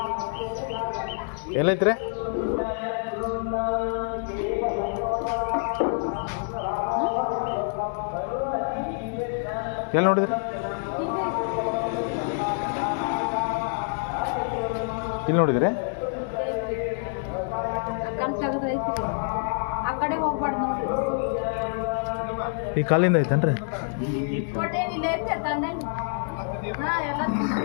ಎಲ್ಲೈತ್ರಿ? ಎಲ್ಲಿ ನೋಡಿದ್ರಿ? ಇಲ್ಲಿ ನೋಡಿದ್ರಿ? ಈ ಕಾಲಿಂದ ಐತೇನ್ರಿ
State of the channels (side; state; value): right; silent; 60 dB below the other